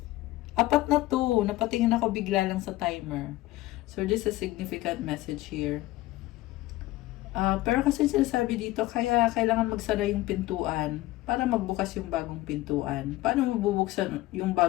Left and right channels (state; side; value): quieter; right; 17.5 dB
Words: Apat na to. Napatingin ako bigla lang sa timer. So, this is a significant message here. Pero kasi sinasabi dito, kaya kailangan magsara yung pintuan para magbukas yung bagong pintuan. Paano mabubuksan yung